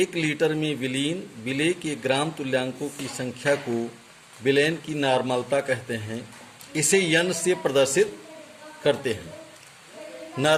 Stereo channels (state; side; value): identical; both; correlation 1.00